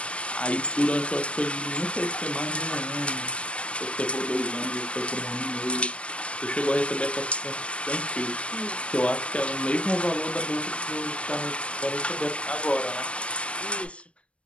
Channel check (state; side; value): late; right; 0.060 ms